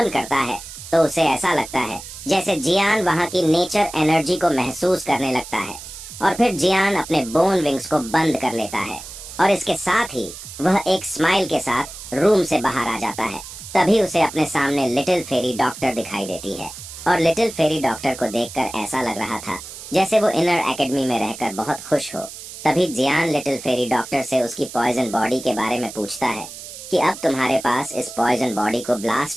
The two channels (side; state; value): right; noise; hiss, 13 dB below the sound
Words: करता है तो उसे ऐसा लगता है जैसे जियान वहां की नेचर एनर्जी को महसूस करने लगता है। और फिर जियान अपने बोन विंग्स को बंद कर लेता है, और इसके साथ ही वह एक स्माइल के साथ रूम से बाहर आ जाता है। तभी उसे अपने सामने लिटिल फेरी डॉक्टर दिखाई देती है, और लिटिल फेरी डॉक्टर को देखकर ऐसा लग रहा था जैसे वो इनर एकेडमी में रहकर बहुत खुश हो। तभी जियान लिटिल फेरी डॉक्टर से उसकी पॉइजन बॉडी के बारे में पूछता है कि अब तुम्हारे पास इस पॉइजन बॉडी को